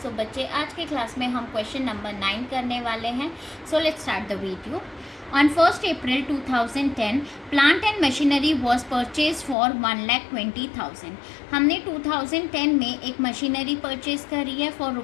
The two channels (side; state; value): right; drops out; at 9.6 s